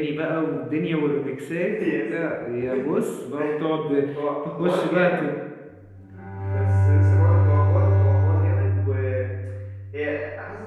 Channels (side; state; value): both; identical; correlation 1.00